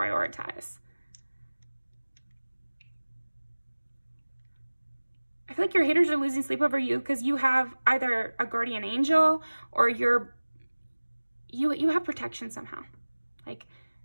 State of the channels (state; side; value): inverted; both; correlation -1.00